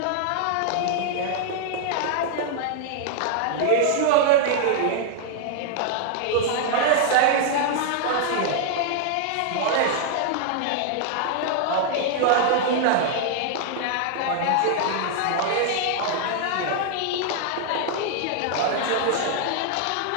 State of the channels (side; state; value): both; different; correlation 0.00